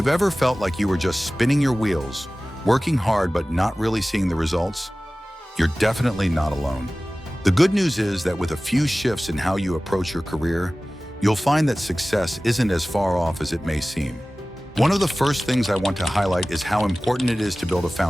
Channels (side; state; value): both; normal; correlation 0.97